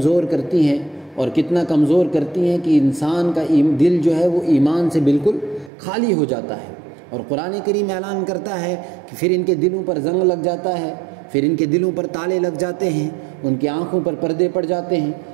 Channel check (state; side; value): drops out; left; at 5.7 s